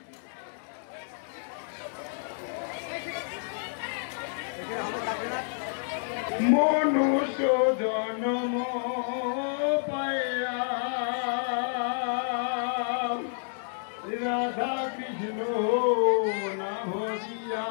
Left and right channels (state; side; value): silent; right; digital silence